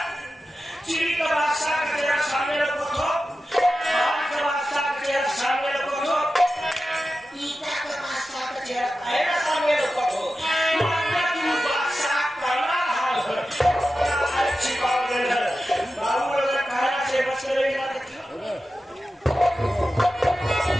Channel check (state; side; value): normal; both; correlation 0.92